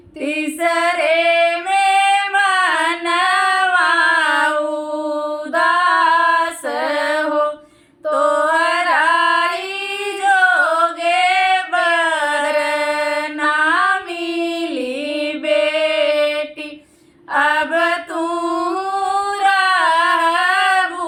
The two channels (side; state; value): both; identical; correlation 1.00